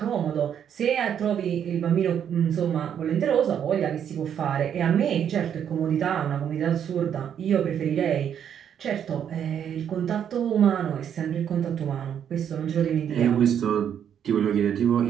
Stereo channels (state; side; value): quieter; left; 8.9 dB